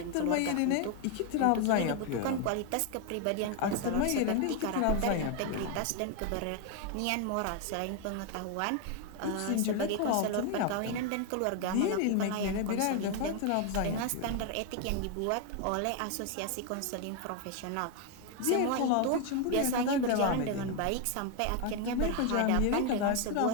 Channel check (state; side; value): different; both; correlation 0.01